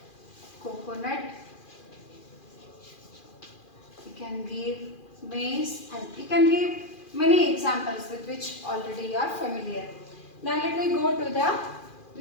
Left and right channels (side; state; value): right; late; 2.4 ms